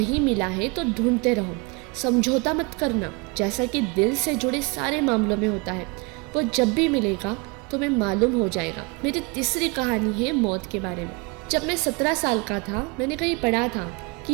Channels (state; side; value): quieter; left; 29.3 dB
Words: मिला है तो ढूंढते रहो, समझौता मत करना, जैसा कि दिल से जुड़े सारे मामलों में होता है। वो जब भी मिलेगा तुम्हें मालूम हो जाएगा। मेरी तीसरी कहानी है मौत के बारे में। जब मैं 17 साल का था, मैंने कहीं पढ़ा था